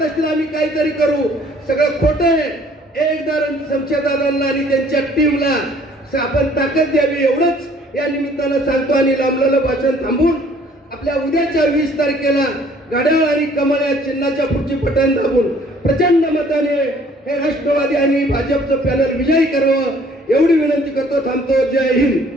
असतील आम्ही काहीतरी करू, सगळं खोटं आहे. एकदा शमशेरदादांना आणि त्यांच्या टीमला आपण ताकद द्यावी एवढंच या निमित्तानं सांगतो. आणि लांबलेलं भाषण थांबून आपल्या उद्याच्या 20 तारखेला घड्याळ आणि कमळ या चिन्हाच्या पुढची बटन दाबून प्रचंड मताने हे राष्ट्रवादी आणि भाजपचं पॅनल विजयी करावं एवढी विनंती करतो. थांबतो. जय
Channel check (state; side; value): normal; both; correlation 0.58